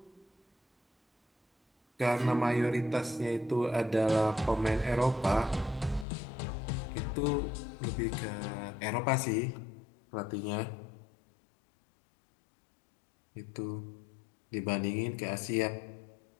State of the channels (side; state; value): right; drops out; at 6.1 s